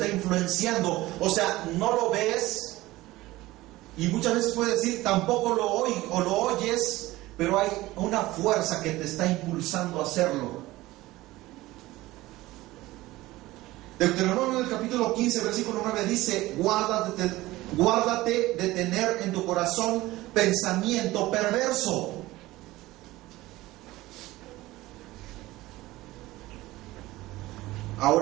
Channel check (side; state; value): left; quieter; 18.1 dB